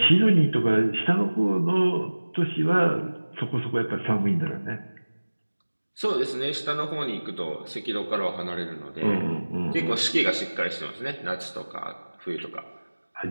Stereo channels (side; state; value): both; inverted; correlation -1.00